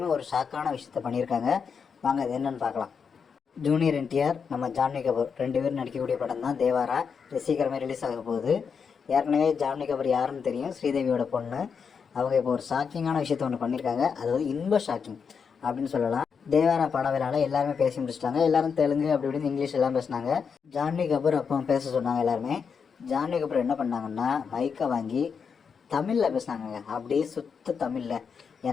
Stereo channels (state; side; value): quieter; right; 6.2 dB